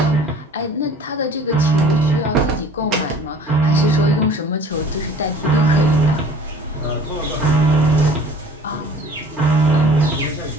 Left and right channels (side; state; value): both; normal; correlation 0.48